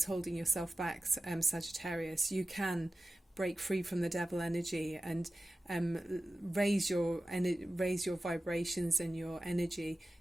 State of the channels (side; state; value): both; normal; correlation 0.94